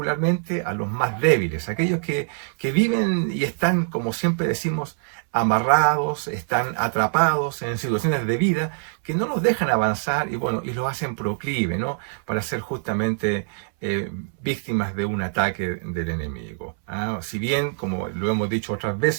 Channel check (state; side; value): silent; left; 63 dB below the other